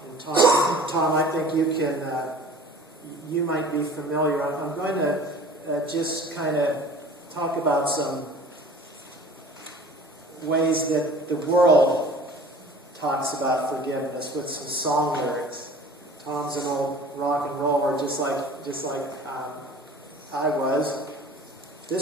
And Tom, I think you might be familiar. I'm going to just kind of talk about some ways that the world talks about forgiveness with some song lyrics. Tom's an old rock and roller, just like I was.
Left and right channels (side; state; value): both; normal; correlation 0.45